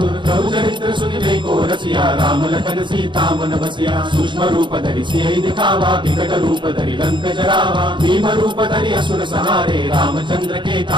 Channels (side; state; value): left; late; 0.23 ms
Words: प्रभु चरित्र सुनिबे को रसिया राम लखन सीता मन बसिया सूक्ष्म रूप धरि सियहि दिखावा विकट रूप धरि लंक जरावा भीम रूप धरि असुर संहारे रामचंद्र के